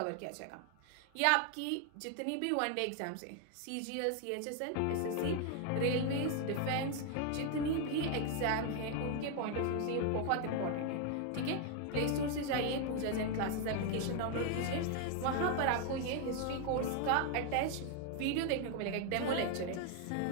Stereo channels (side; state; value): both; different; correlation 0.00